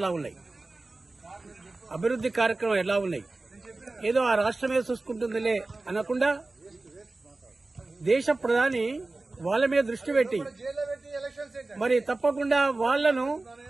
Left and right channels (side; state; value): left; quieter; 3.2 dB